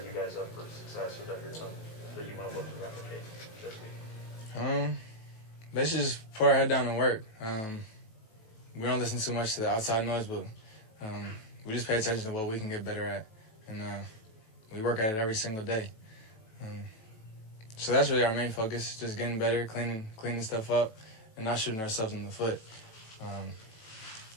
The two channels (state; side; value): late; right; 18 ms